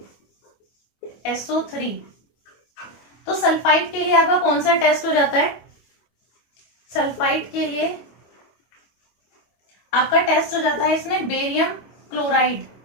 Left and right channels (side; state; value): right; late; 25 ms